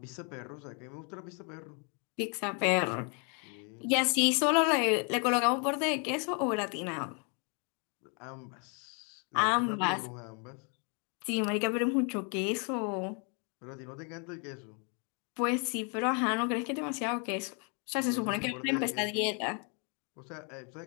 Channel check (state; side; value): quieter; right; 37.7 dB